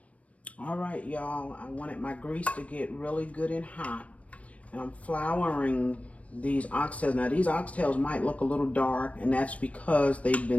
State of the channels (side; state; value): right; late; 0.065 ms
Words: All right, y'all. I wanted my grease to get really good and hot. And I'm flouring these oxtails. Now, these oxtails might look a little dark, and that's because they've